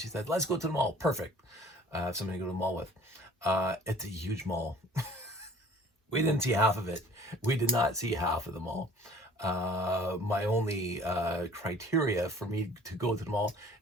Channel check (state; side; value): normal; both; correlation 0.50